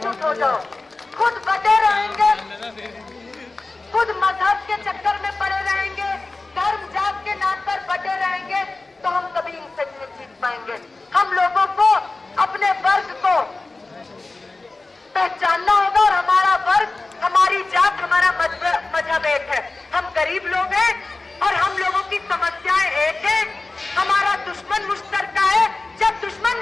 हो जाओ, खुद बटे रहेंगे, खुद मजहब के चक्कर में पड़े रहेंगे, धर्म जात के नाम पर बटे रहेंगे तो हम कभी इनसे नहीं जीत पाएंगे। हम लोगों को अपने वर्ग को पहचानना होगा और हमारा वर्ग, हमारी जात, हमारा मजहब एक है। हम गरीब लोग हैं और हम लोगों की समस्याएं एक है। हमारा दुश्मन मुश्तरका है। जब दुश्मन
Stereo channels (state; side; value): quieter; right; 3.4 dB